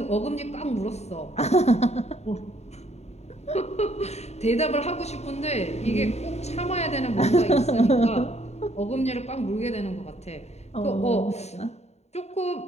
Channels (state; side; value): late; right; 0.32 ms